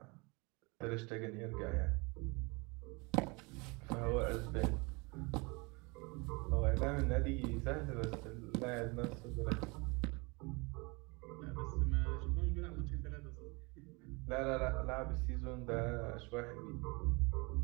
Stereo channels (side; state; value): left; quieter; 28.2 dB